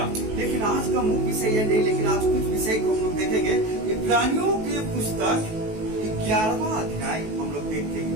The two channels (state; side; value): late; left; 19 ms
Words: लेकिन आज का मुख्य विषय यह नहीं, लेकिन आज कुछ विषय को हम लोग देखेंगे। इब्रानियों के पुस्तक 11वां अध्याय हम लोग